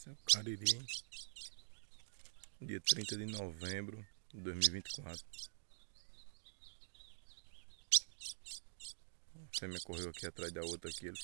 Esse é o cariri, dia 30 de novembro de 2024. A fêmea correu aqui atrás da outra aqui, ele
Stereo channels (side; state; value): left; silent; digital silence